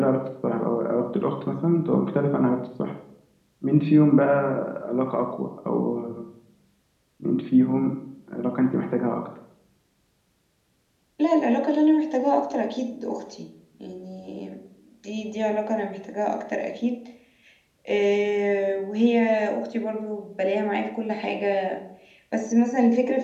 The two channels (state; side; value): identical; both; correlation 1.00